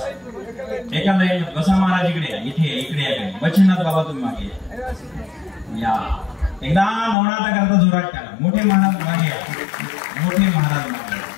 एका लाईन बसा. महाराज इकडे इथे इकडे या. बचनाथ बाबा तुम्ही मागे या. एकदा नवनाथा करता जोरात करा. मोठे महाराज मागे या. मोठे महाराज मागे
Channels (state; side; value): drops out; right; at 7.2 s